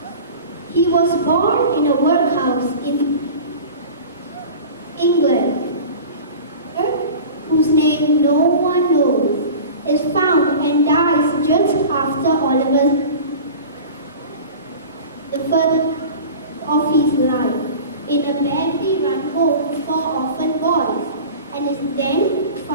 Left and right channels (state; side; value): inverted; both; correlation -0.37